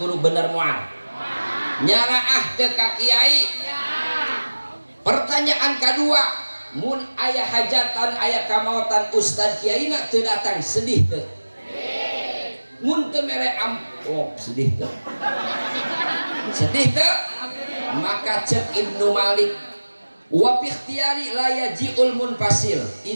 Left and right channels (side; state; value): both; inverted; correlation -1.00